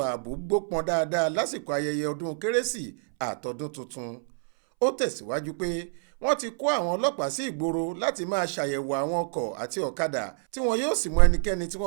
ààbò gbópọn dáadáa lásìkò ayẹyẹ ọdún kérésì àtọdún tuntun. Ó tẹ̀síwájú pé wọ́n ti kó àwọn ọlọ́pàá sí ìgboro láti máa ṣàyẹ̀wò àwọn ọkọ̀ àti ọ̀kadà tí wọn yóò sì mú ẹnikẹ́ni tí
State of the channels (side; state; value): left; silent; 60 dB below the other